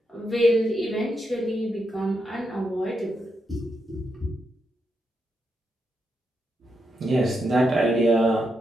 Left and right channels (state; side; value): normal; both; correlation 0.83